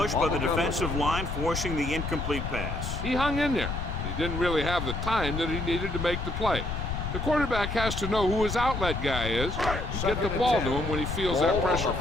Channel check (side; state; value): left; noise; rumble, 4 dB below the sound